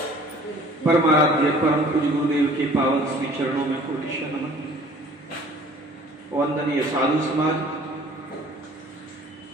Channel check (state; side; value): normal; both; correlation 0.51